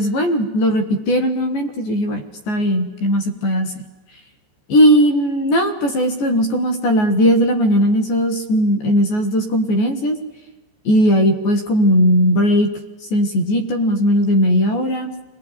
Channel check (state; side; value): late; right; 14 ms